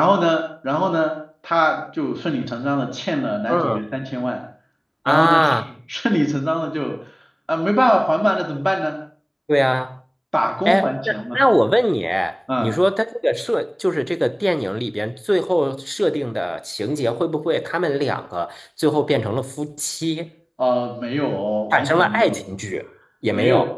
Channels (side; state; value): both; identical; correlation 1.00